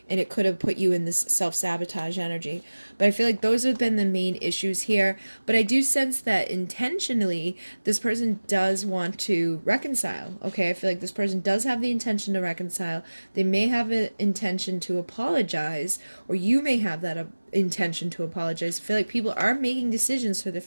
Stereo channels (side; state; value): both; inverted; correlation -1.00